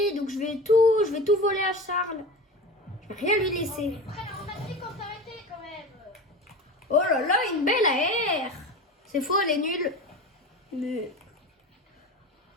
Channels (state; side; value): normal; both; correlation 0.31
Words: Donc je vais tout voler à Charles. Je vais rien lui laisser. On a dit qu'on s'arrêtait quand même. Oh là là, une belle AR. C'est faux, elle est nulle. Mais...